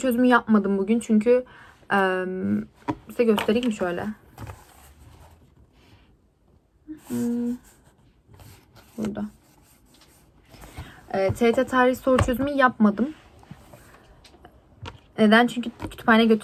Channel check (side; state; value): both; identical; correlation 1.00